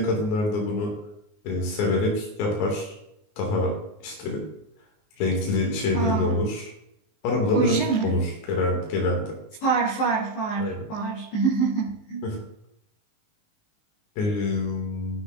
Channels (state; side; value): late; right; 19 ms